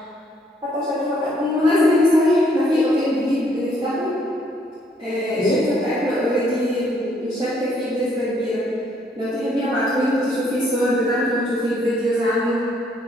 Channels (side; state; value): both; normal; correlation 0.67